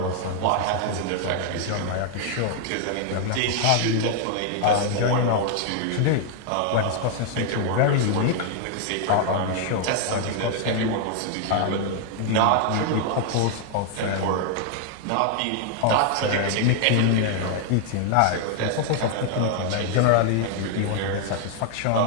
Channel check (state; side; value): different; both; correlation 0.00